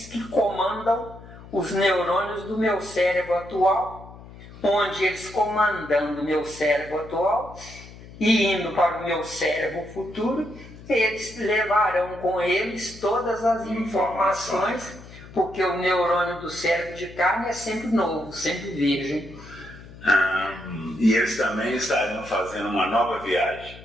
que comandam os neurônios do meu cérebro atual, onde eles comandando o meu cérebro atual e indo para o meu cérebro futuro, eles levarão com eles todas as informações, porque o neurônio do cérebro de carne é sempre novo, sempre virgem. E eles também estariam fazendo uma nova viagem.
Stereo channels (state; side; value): noise; left; hum, 18 dB below the sound